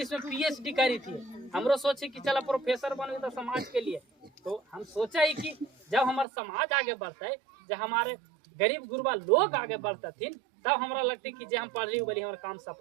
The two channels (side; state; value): left; drops out; at 6.2 s